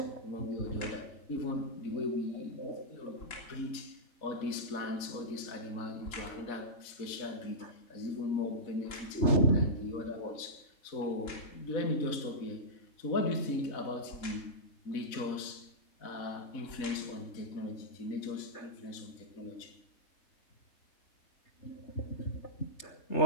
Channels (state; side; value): late; right; 4.0 ms